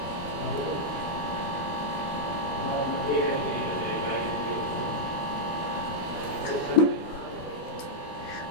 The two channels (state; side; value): late; right; 12 ms